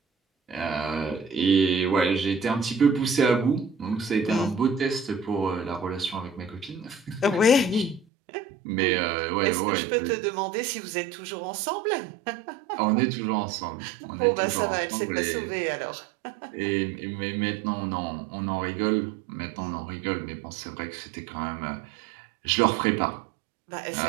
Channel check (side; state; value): left; drops out; at 8.1 s